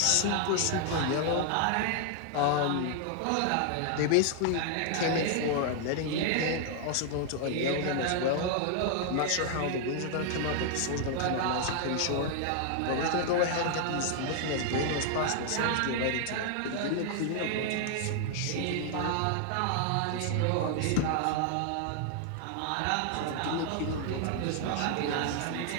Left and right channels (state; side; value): different; both; correlation 0.00